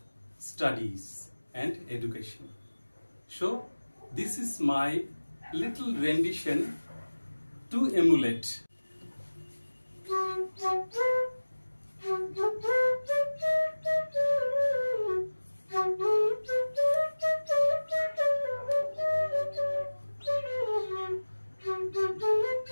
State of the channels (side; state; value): both; inverted; correlation -1.00